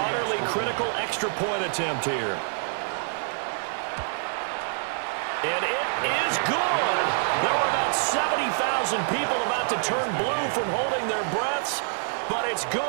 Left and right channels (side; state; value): left; silent; digital silence